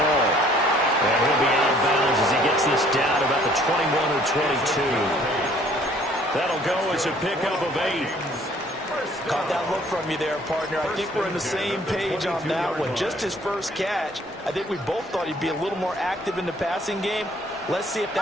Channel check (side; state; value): both; normal; correlation 0.58